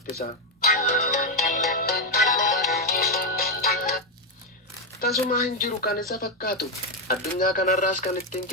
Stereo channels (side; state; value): both; normal; correlation 0.05